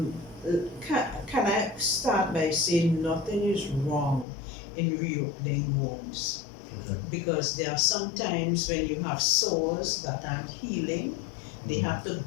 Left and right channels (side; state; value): right; drops out; at 4.2 s